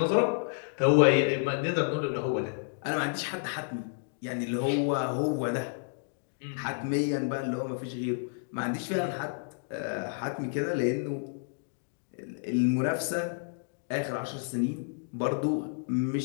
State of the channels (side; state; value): right; silent; digital silence